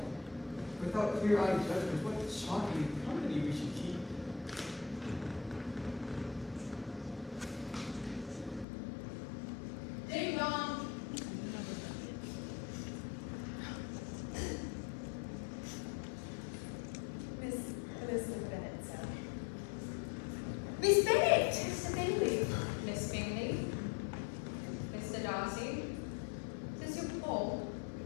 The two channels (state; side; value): drops out; right; at 8.7 s